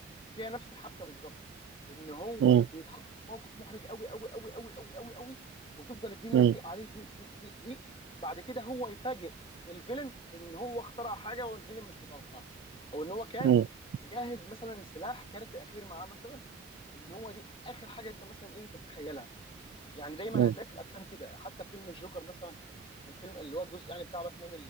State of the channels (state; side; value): quieter; left; 6.6 dB